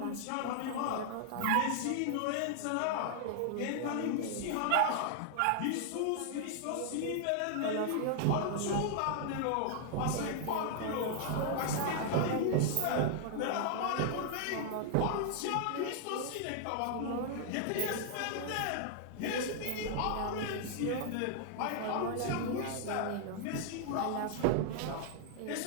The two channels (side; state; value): both; different; correlation 0.00